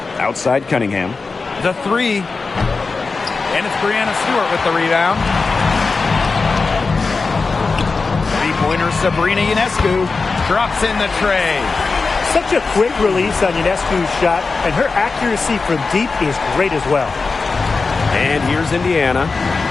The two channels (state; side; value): quieter; right; 4.3 dB